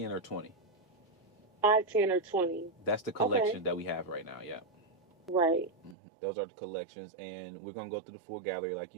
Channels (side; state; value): left; drops out; at 6.0 s